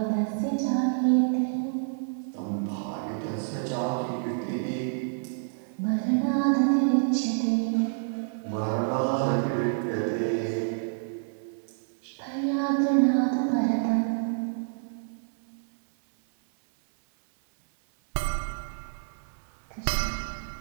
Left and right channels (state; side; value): silent; left; 59 dB below the other